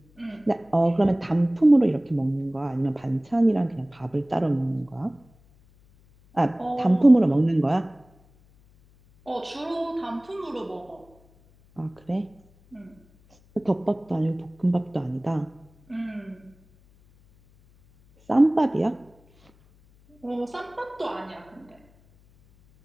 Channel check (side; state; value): left; noise; hum, 30 dB below the sound